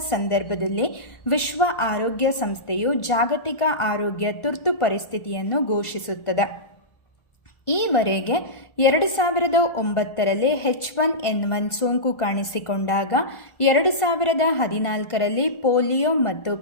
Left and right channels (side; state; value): right; late; 1.4 ms